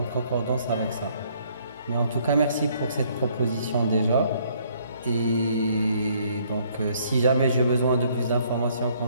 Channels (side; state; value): both; inverted; correlation -0.65